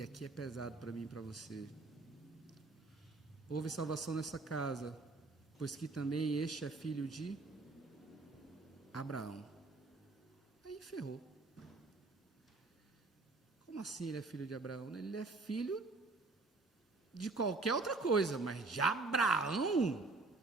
aqui é pesado para mim e para você. Houve salvação nessa casa, pois que também este é filho de Abraão. Aí ferrou. Como assim ele é filho de Abraão? Ele é filho de qualquer outra coisa, mas de Abraão?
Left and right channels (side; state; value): left; quieter; 3.6 dB